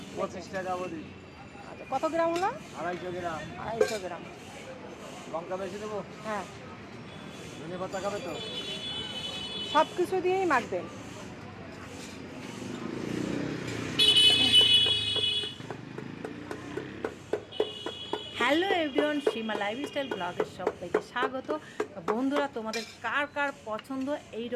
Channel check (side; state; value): both; identical; correlation 1.00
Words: 25 টাকা বলি। আচ্ছা, কত গ্রাম হলো? 250 গ্রাম। 250 গ্রাম। লঙ্কা বেশি দেবো? হ্যাঁ, ধনে পাতা খাবে তো? সব কিছু দিয়েই মাখবেন। হ্যালো এভরিওয়ান, সীমা লাইফস্টাইল ব্লগের সবাইকে স্বাগত। বন্ধুরা, তোমাদের কার কার পছন্দ এই